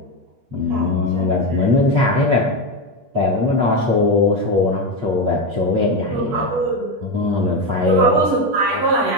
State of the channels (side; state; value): left; late; 8.4 ms